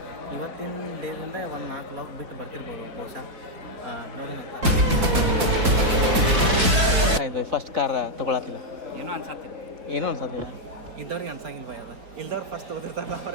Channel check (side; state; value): left; late; 4.4 ms